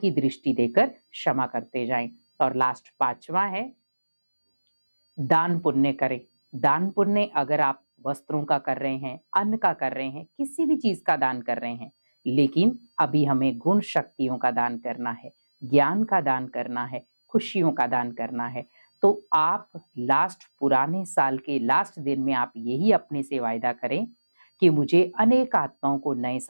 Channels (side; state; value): both; inverted; correlation -1.00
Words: दृष्टि देकर क्षमा करते जाएं। और लास्ट 5वां है, दान पुण्य करें। दान पुण्य अगर आप वस्त्रों का कर रहे हैं, अन्न का कर रहे हैं, किसी भी चीज का दान कर रहे हैं, लेकिन अभी हमें गुण शक्तियों का दान करना है, ज्ञान का दान करना है, खुशियों का दान करना है। तो आप पुराने साल के लास्ट दिन में आप यही अपने से वायदा करें कि मुझे अनेक आत्माओं को नए